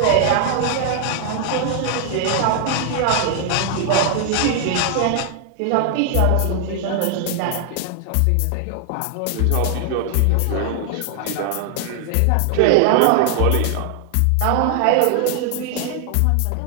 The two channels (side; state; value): both; different; correlation 0.00